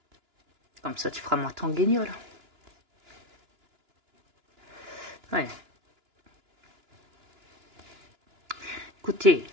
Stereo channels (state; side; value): late; left; 2.9 ms